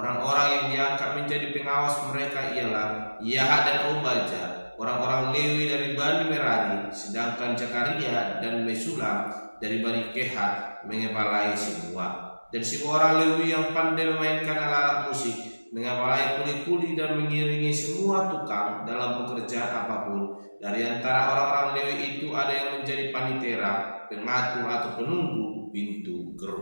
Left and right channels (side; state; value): both; inverted; correlation -1.00